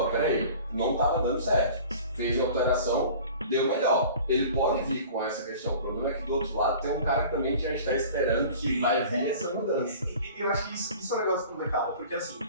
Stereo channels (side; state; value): both; inverted; correlation -0.43